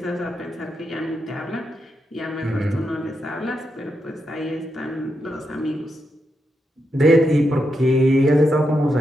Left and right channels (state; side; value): normal; both; correlation 0.84